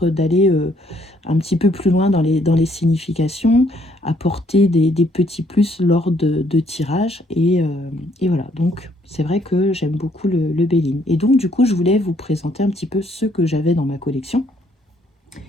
d'aller un petit peu plus loin dans les significations, apporter des petits plus lors de tirages, et voilà. Donc c'est vrai que j'aime beaucoup le Béline. Et donc du coup je voulais vous présenter un petit peu ceux que j'avais dans ma collection.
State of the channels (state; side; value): normal; both; correlation 0.67